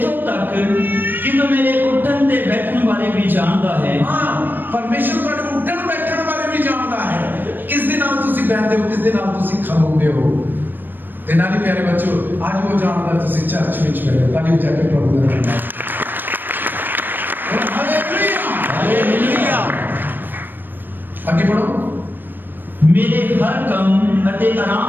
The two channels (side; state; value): left; late; 0.093 ms